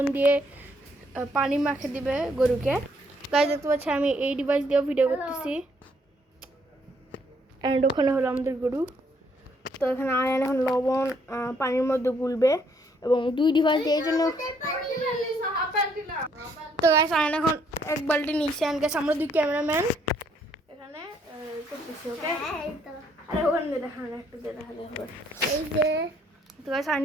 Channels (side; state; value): both; normal; correlation 0.68